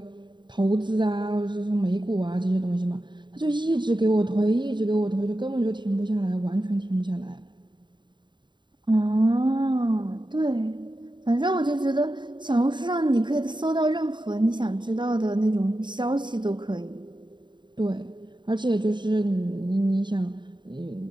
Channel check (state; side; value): late; left; 0.22 ms